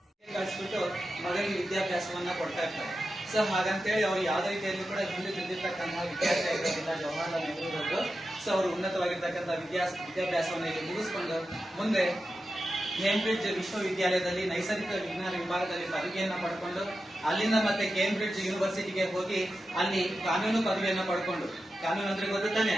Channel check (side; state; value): both; normal; correlation 0.91